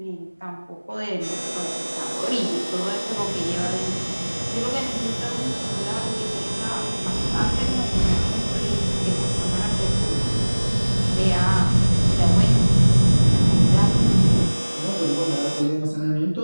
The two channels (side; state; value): both; inverted; correlation -1.00